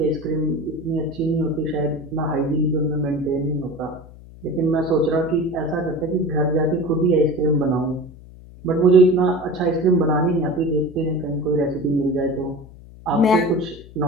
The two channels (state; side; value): noise; left; hum, 19 dB below the sound